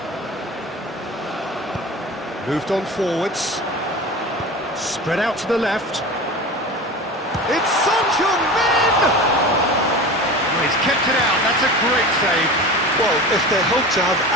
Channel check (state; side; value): normal; both; correlation 0.32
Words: moved on forwards, spread out to the left. It's Son Heung-min! Oh, he's kept it out. That's a great save. Well, if they hope to have